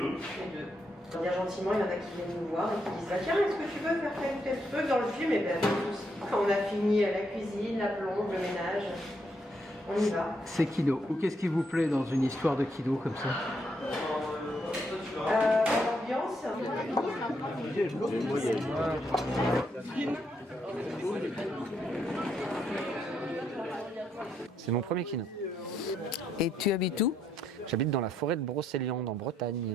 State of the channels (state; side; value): normal; both; correlation 0.76